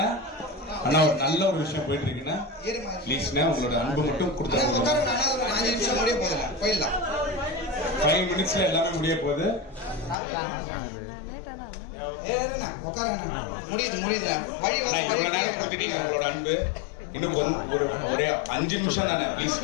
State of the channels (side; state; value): right; drops out; at 10.2 s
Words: அண்ணா ஒரு நல்ல ஒரு விஷயம் போயிட்டு இருக்குன்னா ப்ளீஸ்ண்ணா உங்களோட அன்பு மட்டும் கொடுத்தா உட்காருங்க. 5 நிமிஷம் முடிய போகுதுல, போயிடலாம். 5 minutesல எல்லாமே முடிய போகுது. உட்காருங்க, முடியுது. வழி கொடுத்துட்டீங்க உங்களோட அன்பு. இன்னும் ஒரே 5 நிமிஷம் தானே, ப்ளீஸ்.